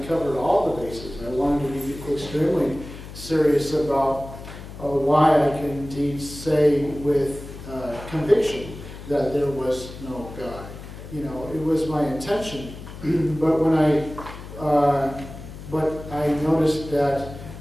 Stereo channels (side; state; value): left; noise; hum, 13 dB below the sound